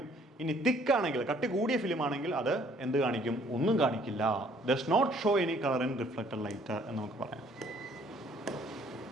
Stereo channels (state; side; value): normal; both; correlation 0.61